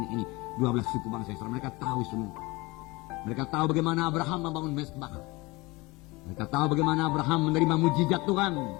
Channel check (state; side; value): quieter; right; 23.3 dB